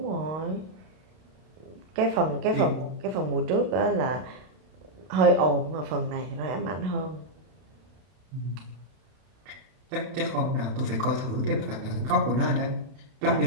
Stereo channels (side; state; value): left; late; 32 ms